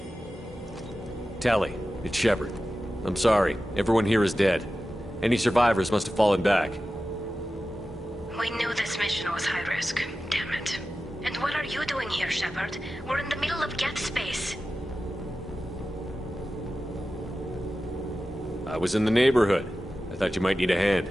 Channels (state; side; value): normal; both; correlation 0.94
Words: Tally, it's Shepard. I'm sorry. Everyone here is dead. Any survivors must have fallen back. We knew this mission was high risk. Damn it. And what are you doing here, Shepard? We're in the middle of Geth space. I was in the neighborhood. I thought you might need a hand.